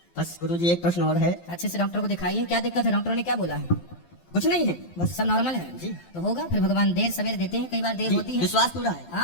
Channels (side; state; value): right; late; 12 ms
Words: बस गुरुजी, एक प्रश्न और है। अच्छे से डॉक्टर को दिखाइए, क्या दिक्कत है? डॉक्टर ने क्या बोला है? कुछ नहीं है, बस सब नॉर्मल है जी। तो होगा। फिर भगवान देर सवेर देते हैं, कई बार देर होती है। विश्वास पूरा है।